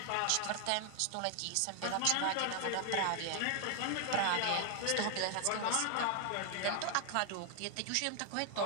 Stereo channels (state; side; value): different; both; correlation 0.00